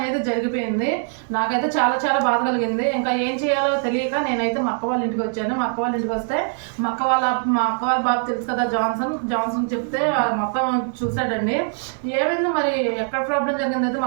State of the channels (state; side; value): silent; left; 64 dB below the other